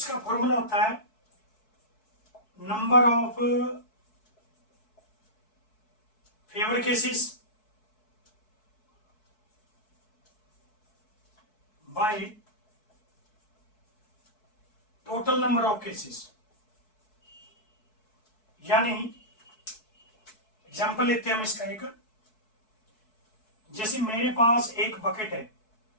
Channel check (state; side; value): late; right; 4.6 ms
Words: फॉर्मूला होता है number of favor cases by total number of cases। यानी एग्जांपल लेते हैं हम इसका एक। जैसे मेरे पास एक बकेट है,